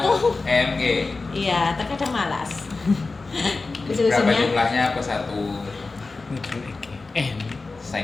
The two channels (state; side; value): quieter; right; 3.8 dB